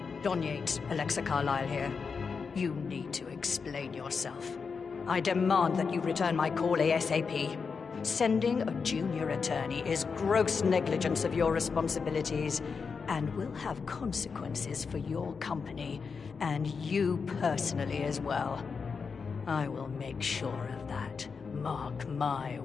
Don Yates, Alexa Carlyle here. You need to explain yourself. I demand that you return my call ASAP. Sending a junior attorney is gross negligence of your responsibilities and will have consequences for your company and you personally as well. I will make sure of that. Mark my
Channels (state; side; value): quieter; right; 5.4 dB